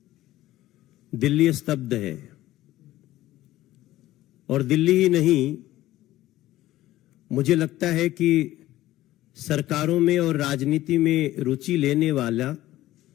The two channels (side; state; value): right; quieter; 15.4 dB